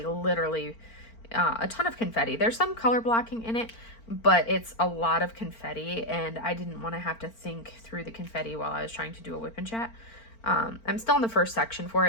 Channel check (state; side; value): late; right; 4.4 ms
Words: literally a ton of confetti. There's some color blocking in it, but it's a lot of confetti, and I didn't want to have to think through the confetti while I was trying to do a WIP and Chat. I'm still in the first section for